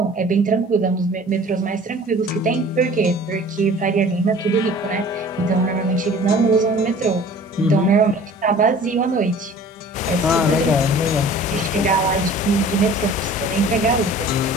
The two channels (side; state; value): both; normal; correlation 0.46